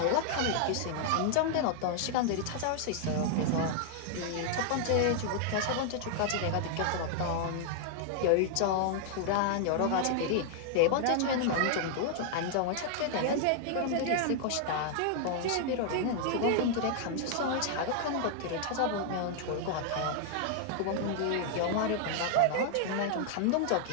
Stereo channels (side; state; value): both; different; correlation 0.00